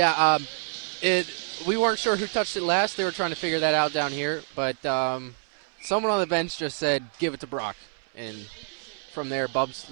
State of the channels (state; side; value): silent; left; 60 dB below the other